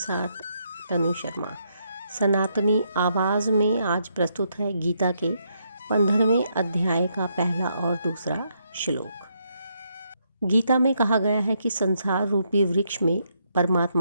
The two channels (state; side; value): inverted; both; correlation -0.76